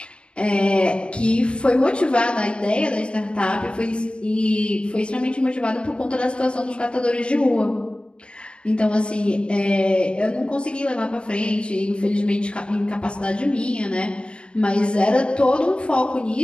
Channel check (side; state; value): right; late; 0.055 ms